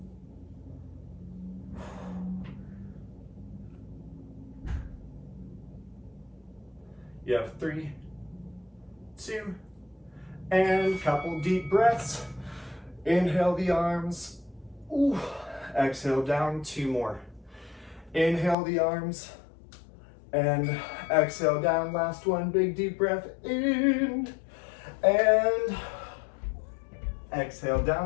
You have 3, 2, and couple deep breaths. Inhale the arms. Ooh. Exhale down, 2 more. Inhale the arms. And exhale down, last one, big deep breath in, and exhale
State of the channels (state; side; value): drops out; right; at 18.6 s